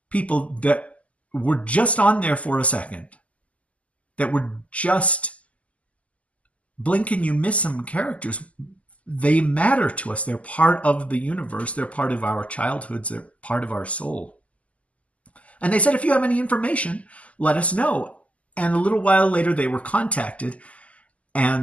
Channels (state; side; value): late; right; 0.068 ms